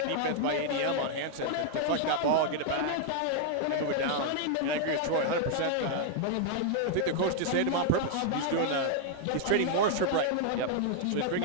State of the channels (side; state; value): both; different; correlation 0.00